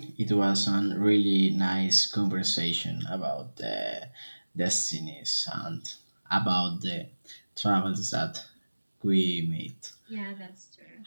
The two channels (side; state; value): both; inverted; correlation -1.00